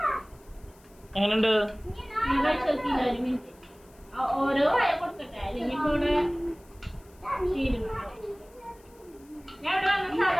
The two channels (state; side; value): noise; left; hiss, 29 dB below the sound